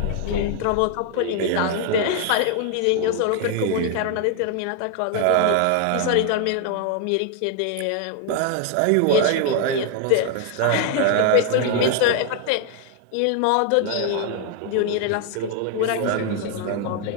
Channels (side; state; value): both; different; correlation 0.00